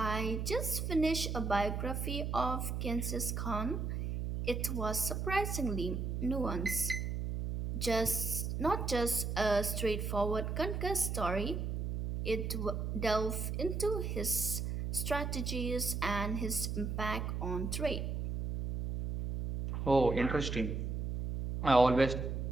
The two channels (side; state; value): right; noise; hum, 2 dB below the sound